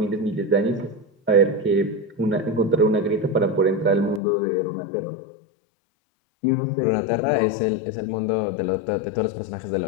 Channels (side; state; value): right; drops out; at 4.2 s